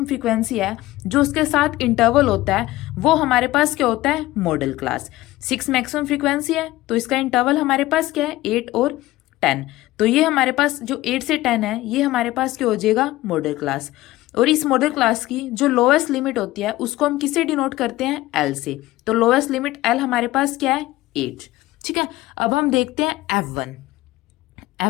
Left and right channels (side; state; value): right; quieter; 17.3 dB